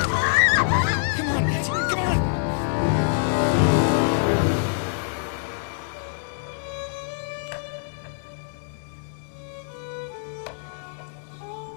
Come on, Nancy, come on!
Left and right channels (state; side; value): silent; right; digital silence